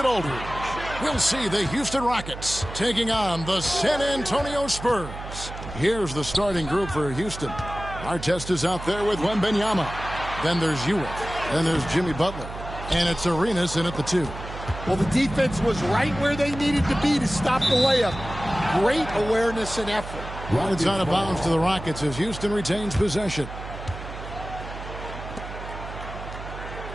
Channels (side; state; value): right; noise; hum, 11 dB below the sound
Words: Aldridge. We'll see the Houston Rockets taking on the San Antonio Spurs. Here's the starting group for Houston. Artest is out there with Wembanyama. Then there's Ewing. Then there's Jimmy Butler. And it's Arenas in at the 2. Well, the defense was right where they needed to be to stop the layup. Great awareness and effort. Well, it's out of bounds to the Rockets as Houston retains possession.